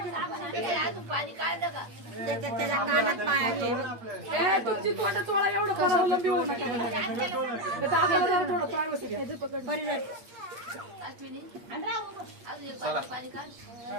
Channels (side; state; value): left; late; 8.5 ms